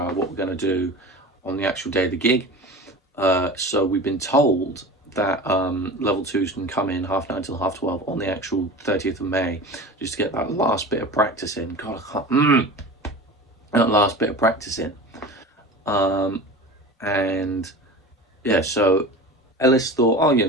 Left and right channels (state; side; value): normal; both; correlation 0.34